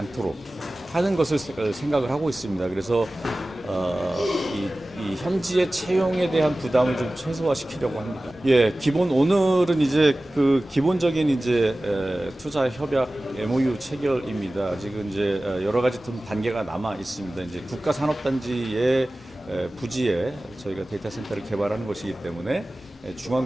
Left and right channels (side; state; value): both; normal; correlation 0.97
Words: 하는 것을 생각을 하고 있습니다. 그래서 이 현지의 채용에 대한 부담을 좀 최소화시키려고 합니다. 예, 오늘은 이제 그 기본적인 이제 투자 협약 MOU 체결입니다. 지금 이제 여러 가지 좀 단계가 남아 있습니다. 이제 국가산업단지의 부지에 저희가 데이터 센터를 개발하는 것이기 때문에